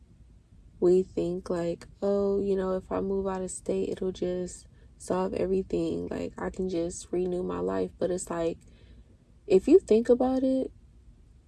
we think like, oh, you know, if I move out of state, it'll just solve everything. Like, I can just renew my life. But it's like, if you think about it,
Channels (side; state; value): both; identical; correlation 1.00